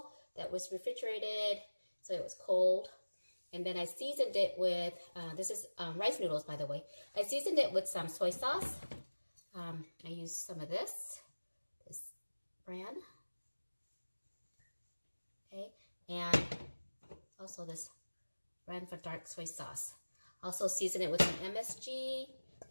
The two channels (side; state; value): both; inverted; correlation -1.00